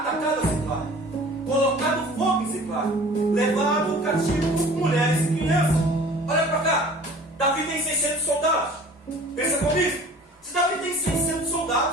Ziclag, colocado fogo em Ziclag, levado o cativo mulheres e crianças. Olha para cá, Davi tem 600 soldados. Pensa comigo, se Davi tem 600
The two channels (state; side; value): normal; both; correlation 0.46